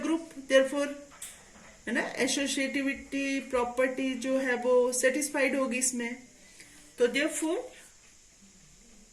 group, therefore है ना, एसोसिएटिविटी प्रॉपर्टी जो है वो सेटिस्फाइड होगी इसमें. तो therefore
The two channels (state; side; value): identical; both; correlation 1.00